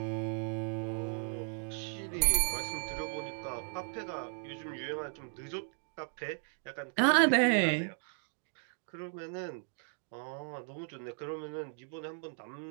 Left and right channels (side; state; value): left; silent; 54 dB below the other